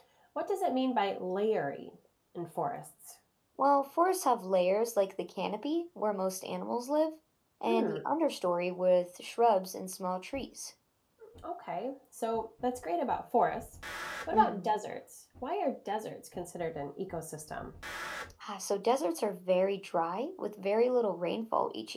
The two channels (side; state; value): both; identical; correlation 1.00